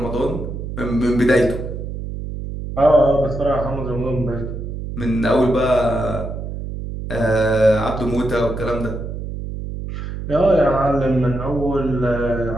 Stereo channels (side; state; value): right; noise; hum, 7 dB below the sound